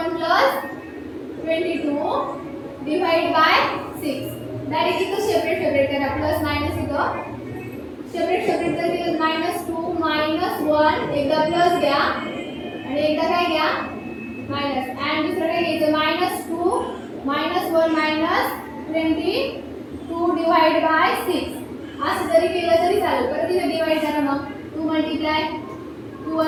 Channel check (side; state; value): both; identical; correlation 1.00